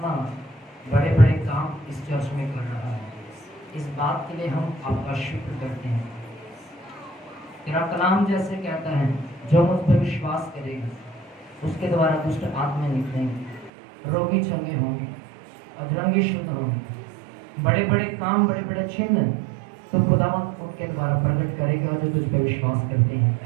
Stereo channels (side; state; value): left; drops out; at 13.7 s